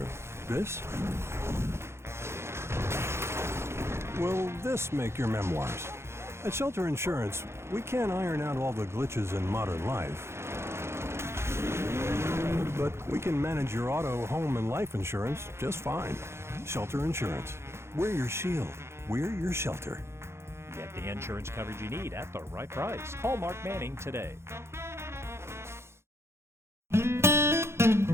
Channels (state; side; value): late; left; 0.13 ms